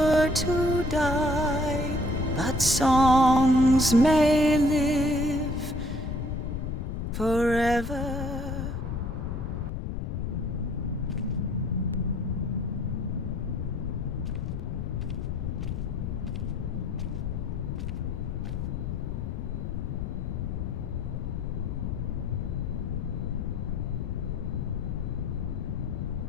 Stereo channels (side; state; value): left; noise; rumble, 3 dB below the sound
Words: to die, but songs may live forever.